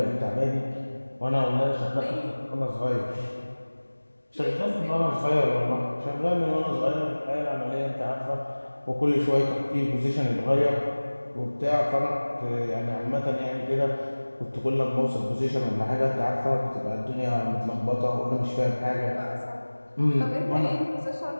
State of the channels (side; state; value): both; inverted; correlation -1.00